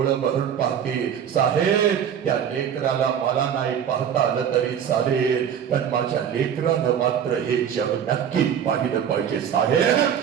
भरून पाहते साहेब. त्या लेकराला मला नाही पाहता आलं तरी चालेल, पण माझ्या लेकरानं मात्र हे जग नक्की पाहिलं पाहिजे साहेब.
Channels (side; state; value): left; quieter; 8.6 dB